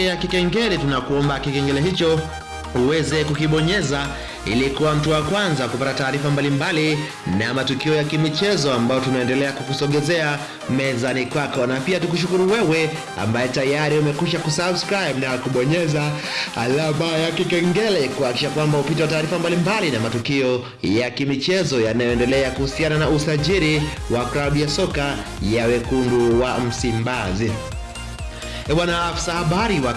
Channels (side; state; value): both; identical; correlation 1.00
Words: kikengele. Tunakuomba kikengele hicho uweze kukibonyeza ili kuwa mtu wa kwanza kupata taarifa mbalimbali na matukio ya kimichezo ambayo tunaendelea kukusogezea mezani kwako. Na pia tukushukuru wewe ambaye tayari umekwisha kusubscribe na kubonyeza alama ya kikengele kuhakikisha kwamba upite taarifa mbalimbali na matukio ya kimichezo yanayoendelea kuhusiana na usajili wa klabu ya soka ya Wekundu wa Msimbazi. Bwana afisa habari wa